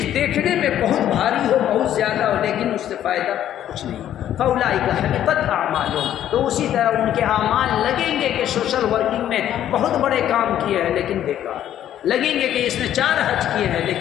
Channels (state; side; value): quieter; right; 11.2 dB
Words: دیکھنے میں بہت بھاری ہو، بہت زیادہ ہو، لیکن اس سے فائدہ کچھ نہیں۔ فاولئک حبطت اعمالہم، تو اسی طرح ان کے اعمال لگیں گے کہ سوشل ورکنگ میں بہت بڑے کام کیے ہیں لیکن بیکار، لگیں گے کہ اس نے 4 حج کیے ہیں